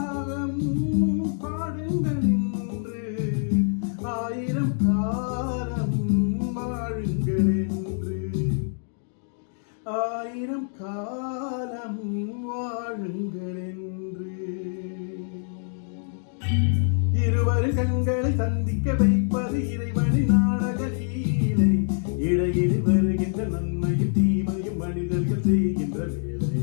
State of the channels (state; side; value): silent; right; digital silence